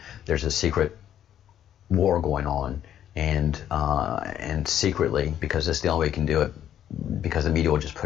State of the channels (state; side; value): quieter; right; 10.5 dB